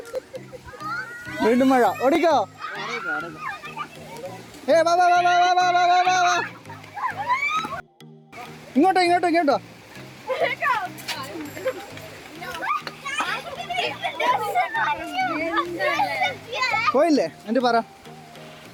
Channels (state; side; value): identical; both; correlation 1.00